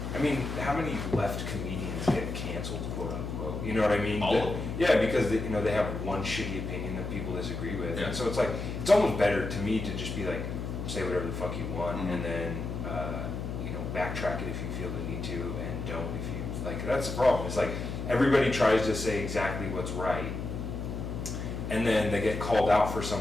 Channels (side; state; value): left; noise; hum, 5 dB below the sound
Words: I mean, how many left comedians get canceled, quote unquote? You know what I mean? All of them. Yeah, because they have one shitty opinion that people disagree with. Yeah. And so it's like, it's almost better to me to just be like, say whatever the fuck you want, and then backtrack it if you feel the need to, and don't if you like. That's the problem. It's like everybody tries to say exactly what's right, and then they get called out for